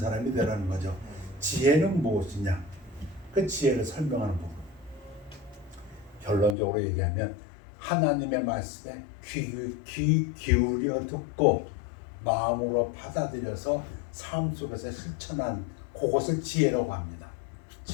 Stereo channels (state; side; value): drops out; right; at 6.6 s